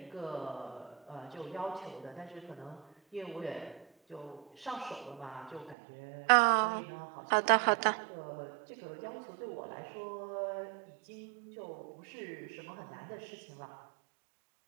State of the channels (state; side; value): drops out; left; at 5.8 s